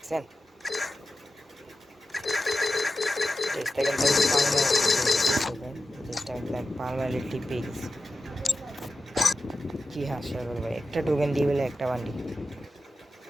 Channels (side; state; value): both; normal; correlation 0.93